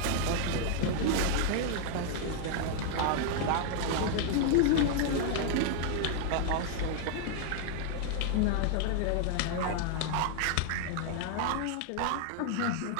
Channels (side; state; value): both; different; correlation 0.00